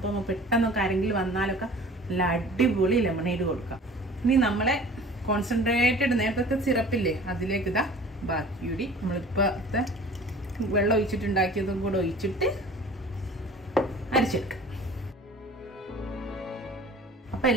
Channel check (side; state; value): both; normal; correlation 0.45